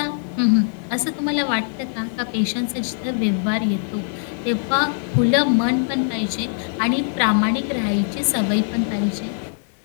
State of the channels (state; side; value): silent; right; digital silence